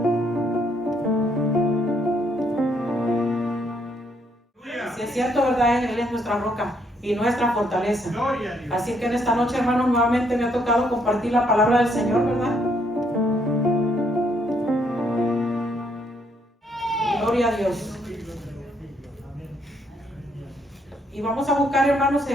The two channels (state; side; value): normal; both; correlation 0.71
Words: Si es cierto, ¿verdad? Él es nuestra roca y nuestra fortaleza. Así que en esta noche, hermanos, nuevamente me ha tocado compartir la palabra del Señor, ¿verdad? Gloria a Dios. Y vamos a buscar, hermanos,